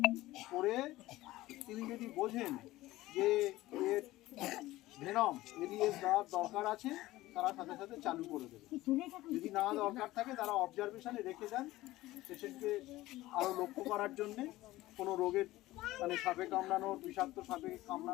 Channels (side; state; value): right; quieter; 17.3 dB